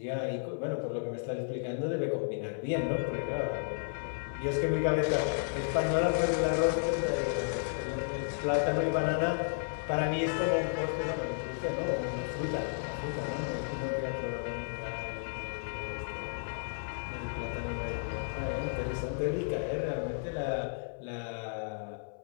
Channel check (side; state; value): right; silent; 56 dB below the other